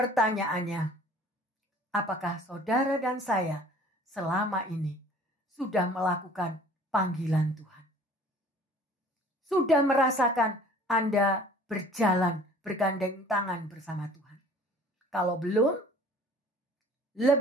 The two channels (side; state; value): both; normal; correlation 0.50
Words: apakah saudara dan saya selama ini sudah melakukan panggilan Tuhan? Sudah merasakan Anda berjalan bergandeng tangan bersama Tuhan? Kalau belum,